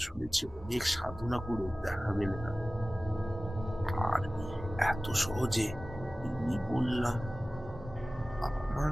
শুনেছি অনেক সাধনা করে দেখা মেলে না। আর এত সহজে আমি বললাম, আমার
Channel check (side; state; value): both; normal; correlation 0.97